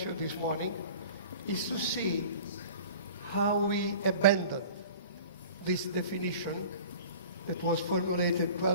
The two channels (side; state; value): both; inverted; correlation -0.42